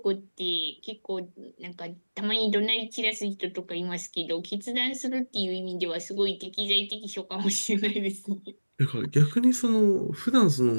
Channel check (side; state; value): both; inverted; correlation -1.00